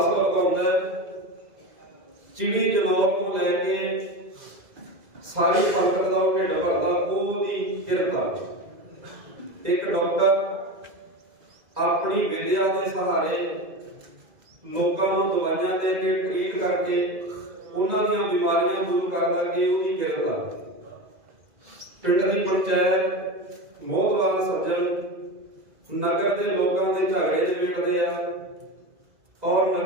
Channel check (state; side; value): late; left; 2.0 ms